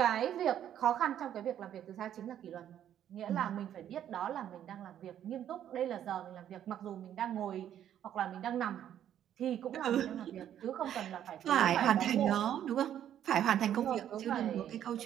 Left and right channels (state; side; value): quieter; left; 10.5 dB